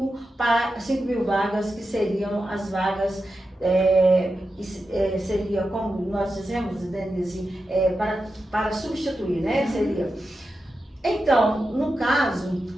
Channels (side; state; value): both; normal; correlation 0.90